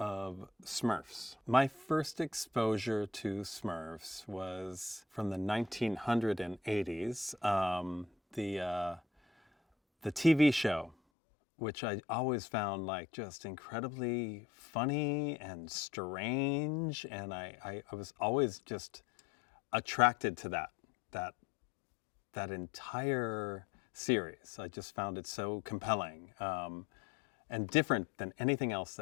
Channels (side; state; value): right; drops out; at 11.0 s